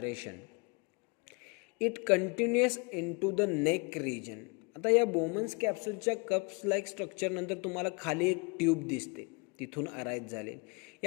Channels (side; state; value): right; quieter; 31.7 dB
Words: It continuous into the neck region. आता या बोमन्स कॅप्सूलच्या कप्स लाईक स्ट्रक्चरनंतर तुम्हाला खाली एक ट्यूब दिसते, तिथून अराईज झाले.